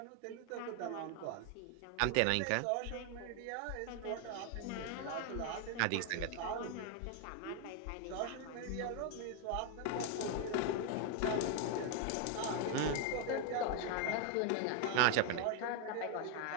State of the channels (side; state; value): both; different; correlation 0.01